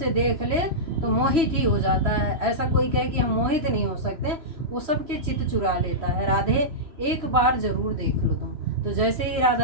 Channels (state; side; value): late; left; 3.0 ms